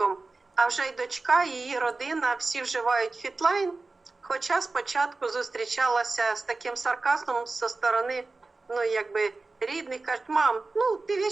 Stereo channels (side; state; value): left; quieter; 3.6 dB